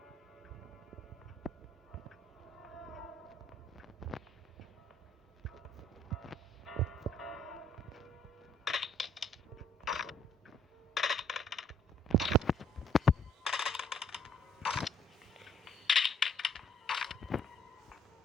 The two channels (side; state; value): both; normal; correlation 0.65